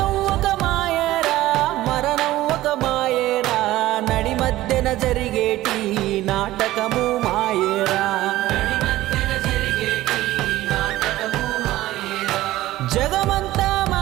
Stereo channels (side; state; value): left; quieter; 16.0 dB